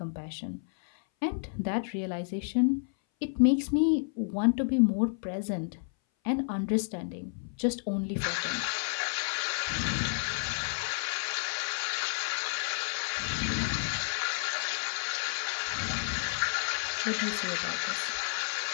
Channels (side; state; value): right; silent; 56 dB below the other